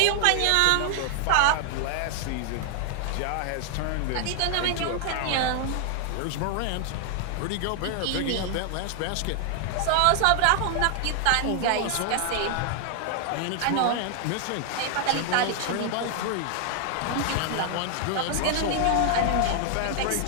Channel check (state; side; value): different; both; correlation 0.00